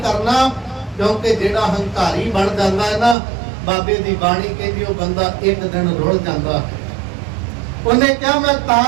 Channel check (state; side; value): drops out; left; at 3.2 s